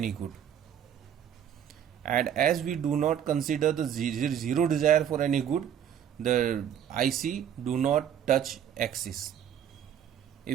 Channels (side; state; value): left; quieter; 9.4 dB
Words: good, and as we do not consider the 0 desire for any good, the IC do not touch axis.